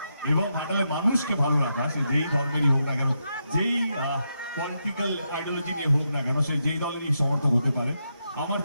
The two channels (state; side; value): inverted; both; correlation -0.84